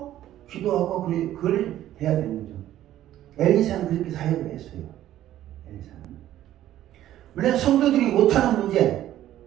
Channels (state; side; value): quieter; left; 12.9 dB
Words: 기도하고 그걸 해야 되는 거죠. 엘리사는 그렇게 사역을 했어요. 엘리사는. 물론 성도들이 못하는 문제,